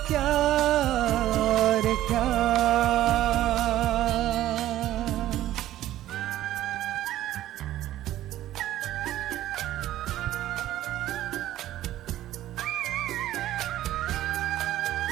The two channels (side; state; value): left; quieter; 13.7 dB